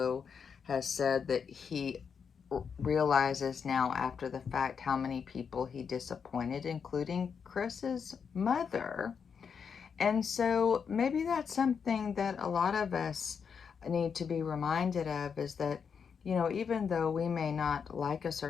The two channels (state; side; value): quieter; right; 6.5 dB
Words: has said that he realizes now after the fact how many people he disappointed, including Chris's mother. And so maybe that's something that a lot of us need to be reminded of, is that, even though we may not like a